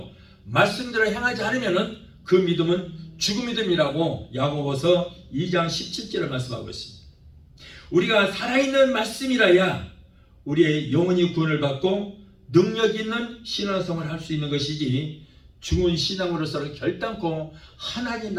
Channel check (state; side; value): identical; both; correlation 1.00